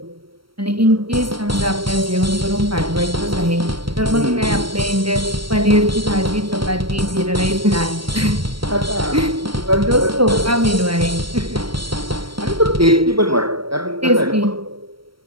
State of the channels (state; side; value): late; left; 0.74 ms